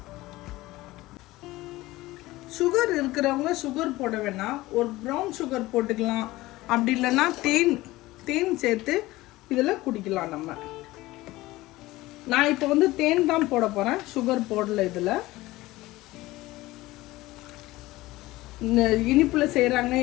சுகர் இருக்கிறவங்க சுகர் போட வேணாம், ஒரு ப்ரௌன் சுகர் போட்டுக்கலாம். அப்படி இல்லைன்னா தேன் சேர்த்து இதில் குடிக்கலாம். நான் இப்போ வந்து தேன் தான் போட போகிறேன், சுகர் போடல. இதில் இந்த இனிப்பில் செய்கிறாங்க,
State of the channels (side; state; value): right; quieter; 18.6 dB